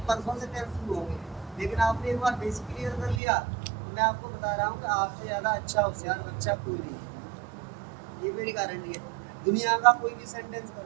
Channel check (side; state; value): left; drops out; at 3.2 s